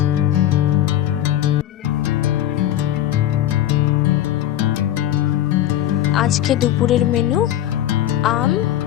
আজকে দুপুরের মেনু আম,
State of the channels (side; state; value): right; quieter; 12.4 dB